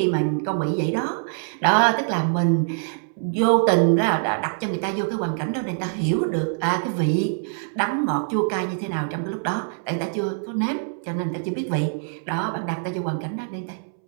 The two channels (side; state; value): left; silent; 63 dB below the other